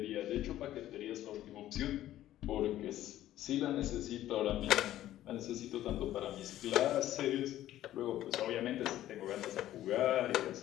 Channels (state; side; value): quieter; right; 13.4 dB